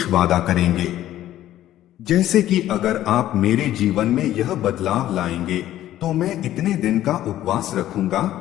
वादा करेंगे, जैसे कि अगर आप मेरे जीवन में यह बदलाव लाएंगे तो मैं इतने दिन का उपवास रखूंगा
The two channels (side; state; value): right; quieter; 13.2 dB